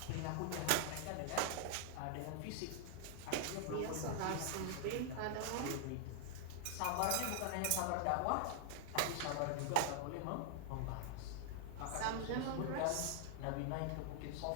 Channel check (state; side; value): different; both; correlation 0.00